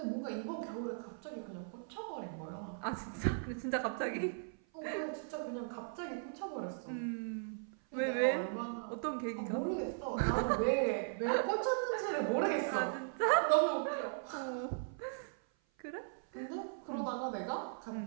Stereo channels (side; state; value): left; silent; 52 dB below the other